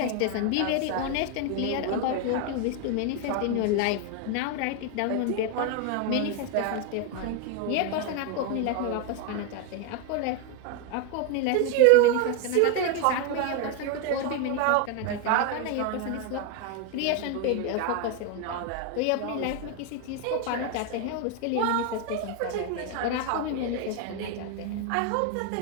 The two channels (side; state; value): both; different; correlation 0.01